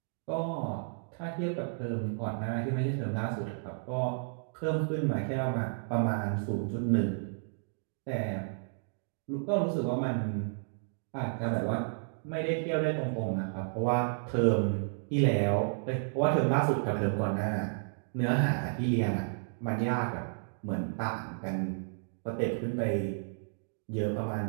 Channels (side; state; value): left; silent; digital silence